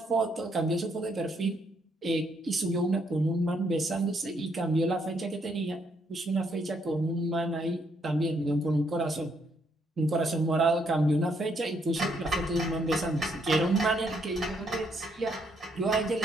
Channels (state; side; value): normal; both; correlation 0.73